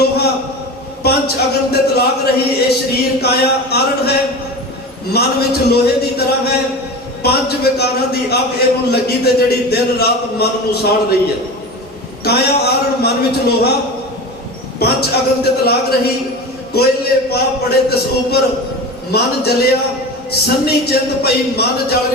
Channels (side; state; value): both; normal; correlation 0.30